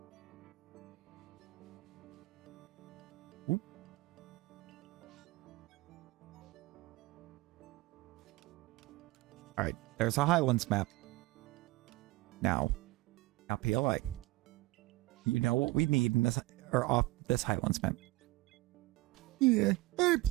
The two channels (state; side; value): quieter; left; 20.2 dB